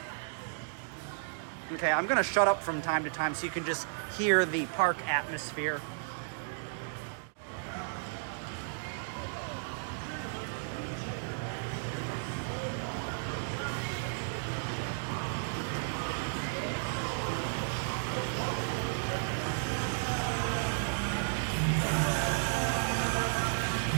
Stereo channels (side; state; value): left; silent; digital silence